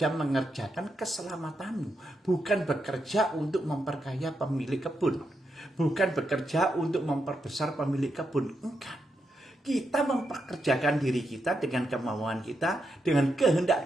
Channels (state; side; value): normal; both; correlation 0.83